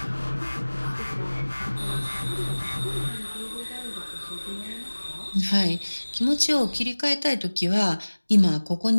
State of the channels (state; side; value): inverted; both; correlation -1.00